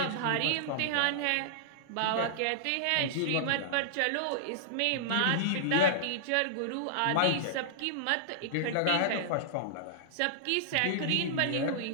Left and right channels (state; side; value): different; both; correlation -0.01